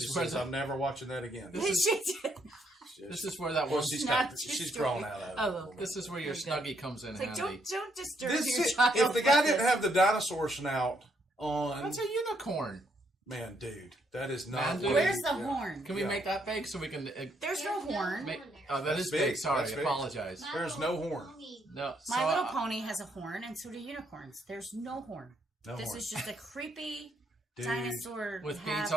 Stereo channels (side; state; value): both; normal; correlation 0.73